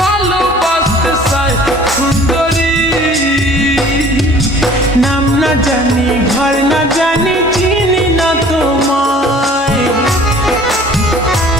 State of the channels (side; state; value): both; normal; correlation 0.50